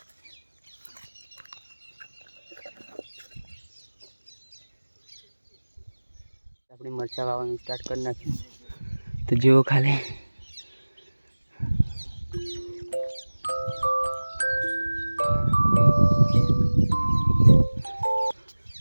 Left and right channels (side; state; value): both; inverted; correlation -1.00